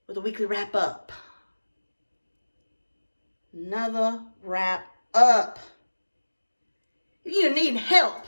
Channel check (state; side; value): inverted; both; correlation -1.00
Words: with a weekly wrap up. Another wrap up. If you need help